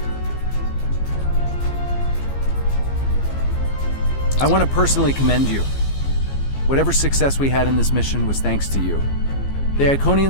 I want to personally commend you. Whatever success we had in this mission was thanks to you. The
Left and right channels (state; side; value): late; right; 15 ms